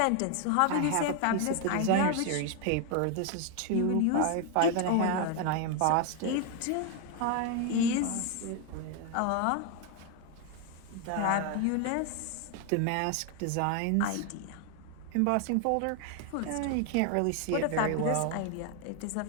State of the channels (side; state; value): both; different; correlation 0.01